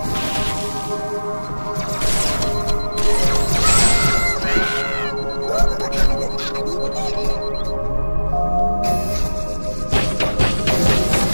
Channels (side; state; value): both; inverted; correlation -1.00